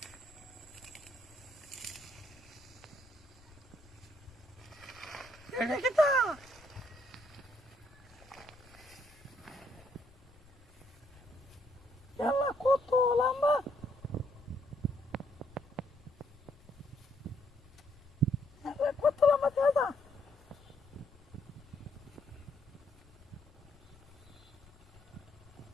এটা কি তা ইয়াল্লা কত লম্বা কত লম্বা দাদা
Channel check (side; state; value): left; noise; rumble, 25 dB below the sound